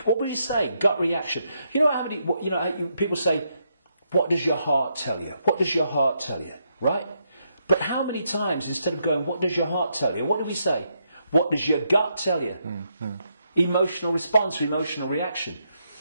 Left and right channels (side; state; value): both; inverted; correlation -0.79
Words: what would you say? Gut reaction. You know how many? People say, "What does your heart tell you? What does your heart tell you?" Right? But how many times, instead of going, "What does your heart tell you?" what do we say? What does your gut tell you? Emotional response, emotional reaction.